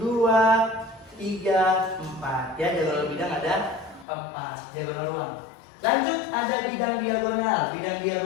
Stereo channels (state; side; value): drops out; right; at 4.0 s